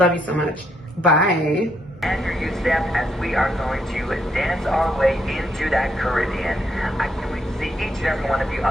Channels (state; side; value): normal; both; correlation 0.75